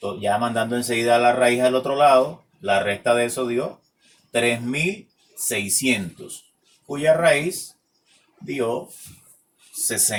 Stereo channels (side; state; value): both; identical; correlation 1.00